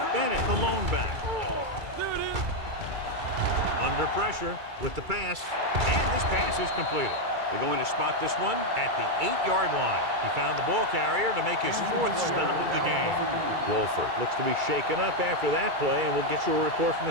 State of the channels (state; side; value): late; left; 2.3 ms